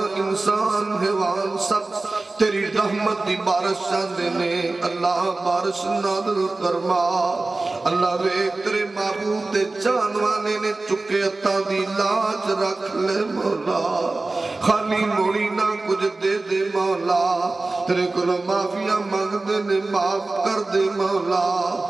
انسان حیوان سب تیری رحمت دی بارش چاندے نے اللہ بارش نادل فرما اللہ وے تیرے معبود دے جانوانے نے چکے عطا دی لاج رکھ لے مولا خالی موڑی نہ کچھ دے دے مولا تیرے کو معافیہ مانگ دے نے معاف کر دے مولا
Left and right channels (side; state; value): left; quieter; 3.3 dB